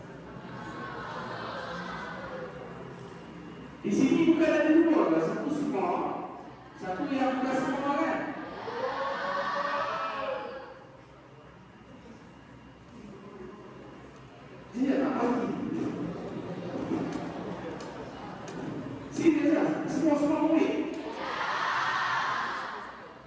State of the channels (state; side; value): identical; both; correlation 1.00